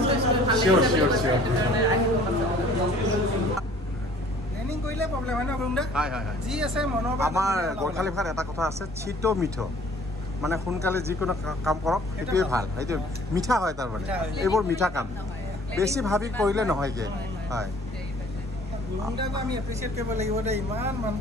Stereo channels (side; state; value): both; normal; correlation 0.53